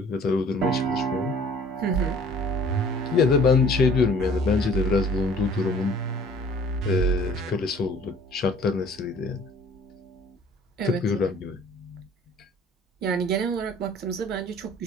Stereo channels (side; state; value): both; normal; correlation 0.52